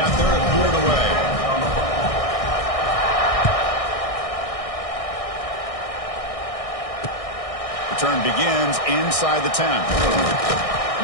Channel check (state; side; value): late; right; 1.6 ms